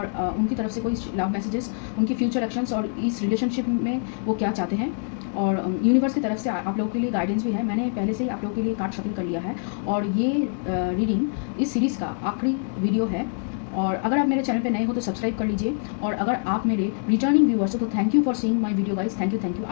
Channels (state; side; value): silent; right; 62 dB below the other